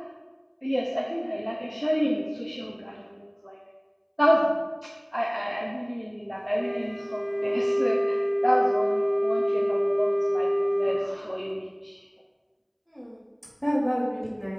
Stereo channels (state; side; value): identical; both; correlation 1.00